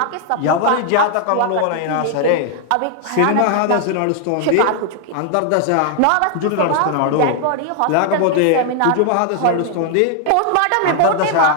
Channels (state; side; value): different; both; correlation 0.00